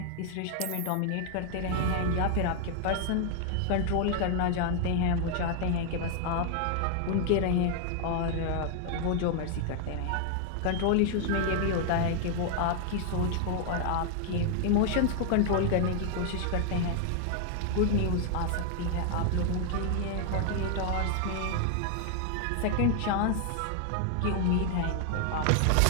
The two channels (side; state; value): both; different; correlation 0.00